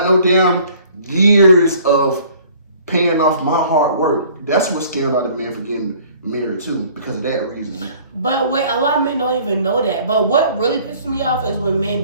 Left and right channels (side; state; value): both; inverted; correlation -0.54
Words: no damn years of paying off my hard work. That's what scared a lot of men for getting married too, because of that reason. But wait, a lot of men don't even know that. But what really pisses me off is when men